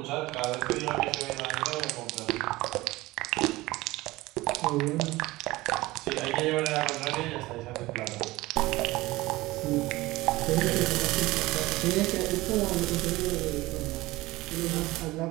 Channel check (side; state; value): left; quieter; 19.3 dB